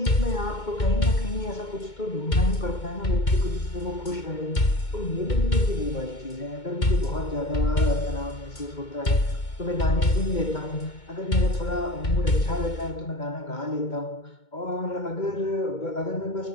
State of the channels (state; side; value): late; right; 2.2 ms